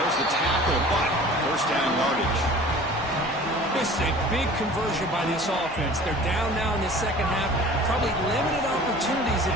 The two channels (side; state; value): both; normal; correlation 0.44